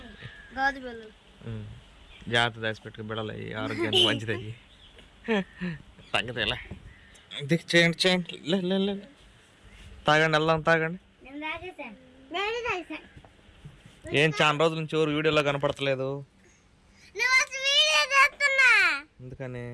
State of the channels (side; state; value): both; identical; correlation 1.00